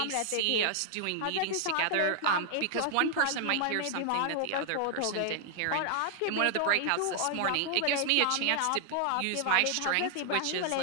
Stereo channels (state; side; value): different; both; correlation 0.00